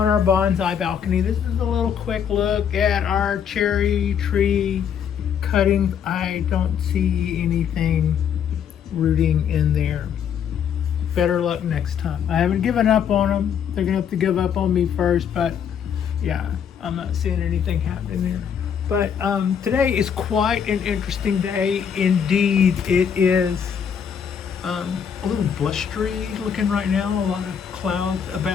our bonsai balcony. This is a little quick look at our cherry tree cuttings. I don't see anything rooting in there. Better luck next time. I haven't given up on them. They're gonna have to give up on me first, but yeah, I'm not seeing anything happening there. But today is quite an interesting day indeed. It is a little blustery looking right now, a lot of clouds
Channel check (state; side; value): quieter; right; 7.9 dB